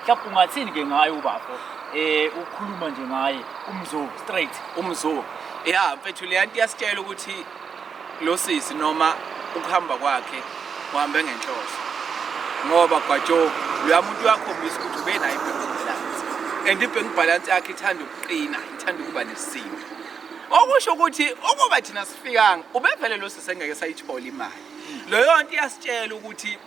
Mhlawumbe ungathini ke ngayo ubafo? Ukhuluma nje ngaye umzo straight umzo. Mfethu le nto iyasitshela ukuthi lo sisi noma ukuhamba kwakhe uhambe ngenhloso. Ngoba kwajo lo muntu uyakhombisa ukuthi ube nayo ibank balance. And ibank balance yakhe ithanda ukuqina, ithanda ukuba nesimo. Okusho ukuthi ukuba thina sifikanga ubevele lo sisi engeke sayithola imali. Leyo nto iyasitshela ukuthi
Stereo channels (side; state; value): left; quieter; 6.4 dB